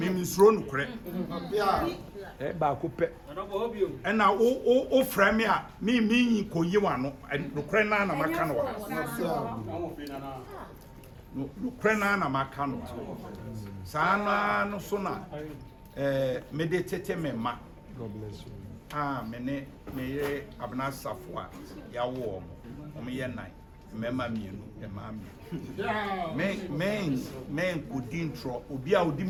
no kure ba ko pe ena o frame a mi yin koyi wa no kure na na maka no no kure na maka no sana no so na meditate mema God bless you. Me abna safwa ya wo mo ye nan mema mienu e ma me men kudin tro obi a odi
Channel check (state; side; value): identical; both; correlation 1.00